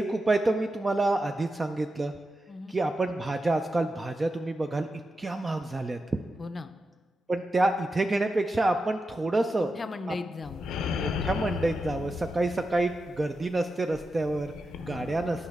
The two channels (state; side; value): normal; both; correlation 0.89